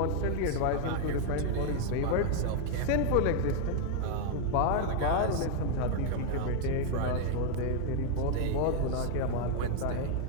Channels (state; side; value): different; both; correlation 0.00